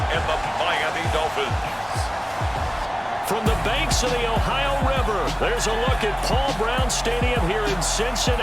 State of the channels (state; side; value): identical; both; correlation 1.00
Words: and the Miami Dolphins. From the banks of the Ohio River, there's a look at Paul Brown Stadium here in